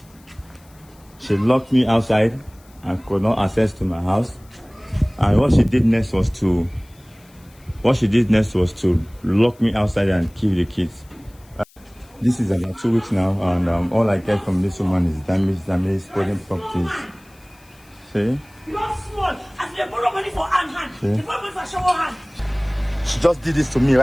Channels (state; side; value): noise; left; hiss, 29 dB below the sound